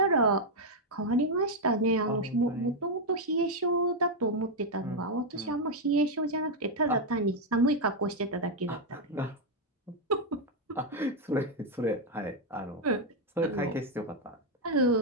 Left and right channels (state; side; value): normal; both; correlation 0.01